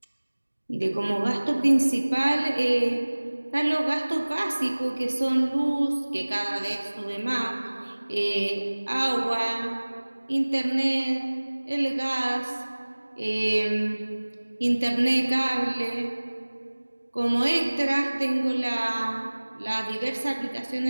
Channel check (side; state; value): both; inverted; correlation -1.00